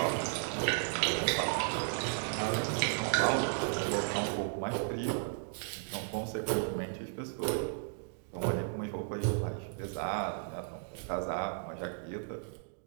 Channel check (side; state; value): left; silent; digital silence